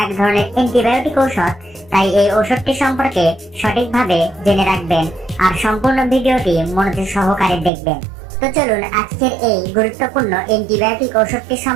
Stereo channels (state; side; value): drops out; left; at 7.7 s